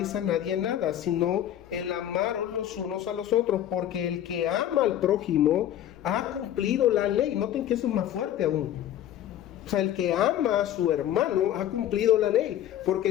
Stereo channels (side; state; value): right; quieter; 11.5 dB